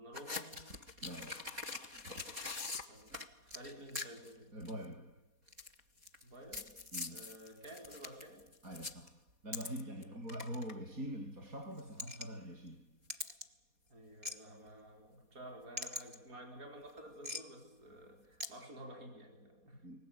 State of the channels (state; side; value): late; left; 4.2 ms